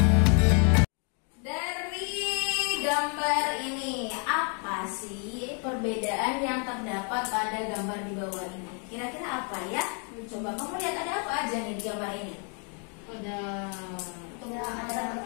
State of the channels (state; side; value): quieter; right; 38.5 dB